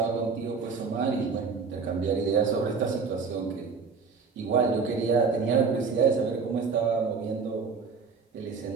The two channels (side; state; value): left; quieter; 5.1 dB